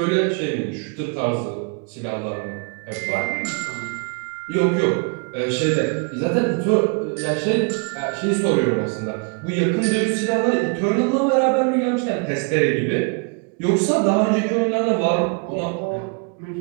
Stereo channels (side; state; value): left; quieter; 36.4 dB